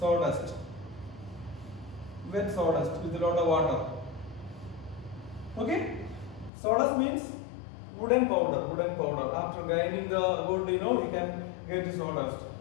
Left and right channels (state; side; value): drops out; right; at 6.5 s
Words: Wet sawdust with a lot of water. Okay. Sawdust means wooden powder. Wooden powder. After grinding the wood, you can get sawdust.